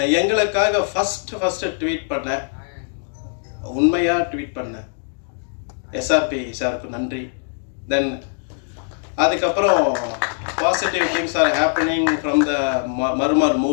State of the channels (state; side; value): silent; right; digital silence